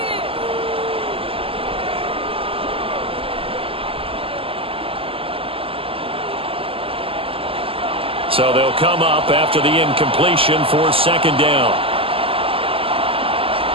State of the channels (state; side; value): late; left; 0.26 ms